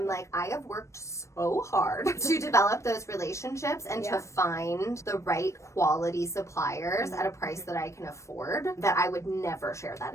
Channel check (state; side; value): late; right; 0.14 ms